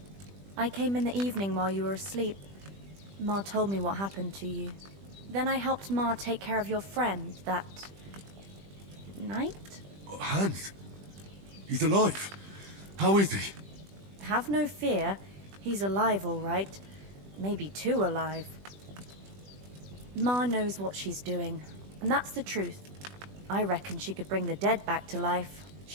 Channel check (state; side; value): late; left; 20 ms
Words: I came in the evening while you were asleep. Ma told me what happened to you. Then I helped Ma take care of your friend that night? Hans? He's alive. How is he? Have no fear. He's alive, all right. Maybe too alive. Ma knows what she's doing, and that's the truth. I reckon she could bring the dead back to life.